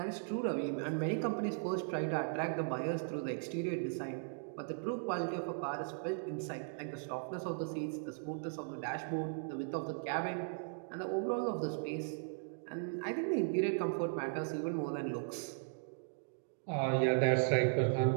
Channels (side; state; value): left; silent; digital silence